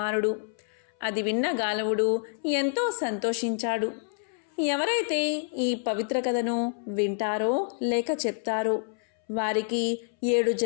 అది విన్న గాలవుడు ఎంతో సంతోషించాడు. ఎవరైతే ఈ పవిత్ర కథను వింటారో లేక చెప్తారో వారికి 7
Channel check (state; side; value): silent; right; 60 dB below the other